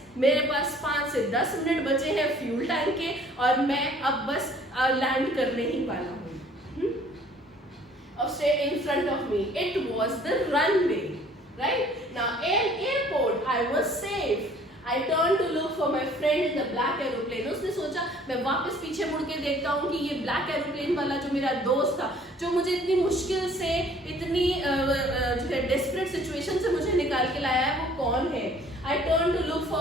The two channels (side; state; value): both; normal; correlation 0.55